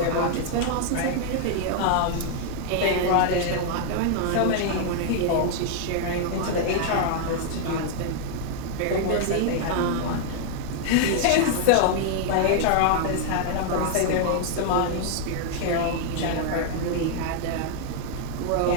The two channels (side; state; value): both; different; correlation 0.00